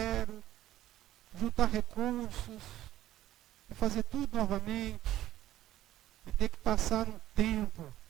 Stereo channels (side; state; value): left; quieter; 13.8 dB